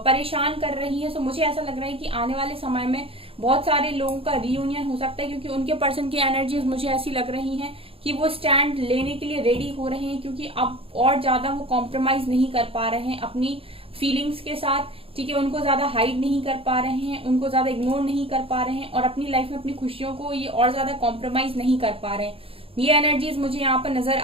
परेशान कर रही है। सो मुझे ऐसा लग रहा है कि आने वाले समय में बहुत सारे लोगों का रियूनियन हो सकता है, क्योंकि उनके पर्सन की एनर्जीज मुझे ऐसी लग रही हैं कि वो स्टैंड लेने के लिए रेडी हो रहे हैं, क्योंकि अब और ज्यादा वो कॉम्प्रोमाइज नहीं कर पा रहे हैं अपनी फीलिंग्स के साथ, ठीक है। उनको ज्यादा हाइड नहीं कर पा रहे हैं, उनको ज्यादा इग्नोर नहीं कर पा रहे हैं, और अपनी लाइफ में अपनी खुशियों को ये और ज्यादा कॉम्प्रोमाइज नहीं कर पा रहे हैं। ये एनर्जीज मुझे यहाँ पर नजर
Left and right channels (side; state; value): left; late; 0.27 ms